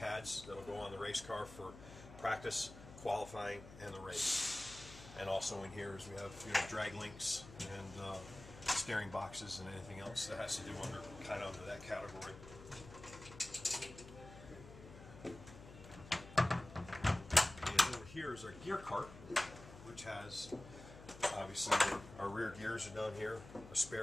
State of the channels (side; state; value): left; noise; hum, 16 dB below the sound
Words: that'll go on the race car for practice, qualifying, and the race. And also in here is we have drag links and steering boxes and anything else that has to do under that category. And over here is our gear cart, which has obviously our rear gears are down here, a